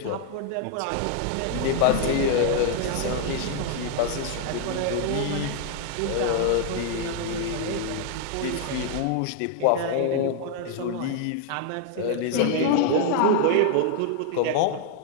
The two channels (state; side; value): different; both; correlation 0.00